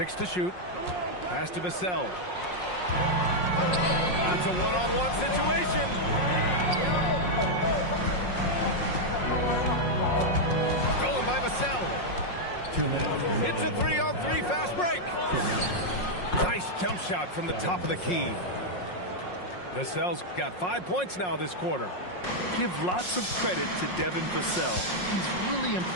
to shoot. Pass to Vassell. It's a one-on-one situation. By Vassell. It's a 3-on-3 fast break. Nice jump shot from the top of the key. Vassell's got 5 points now this quarter. Give lots of credit to Devin Vassell. He's really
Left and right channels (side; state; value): right; late; 5.5 ms